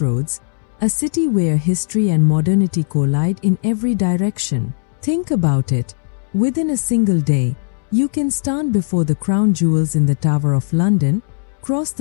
a city where history and modernity collide in every direction. Think about it. Within a single day, you can stand before the crown jewels in the Tower of London, cross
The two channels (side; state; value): right; silent; 68 dB below the other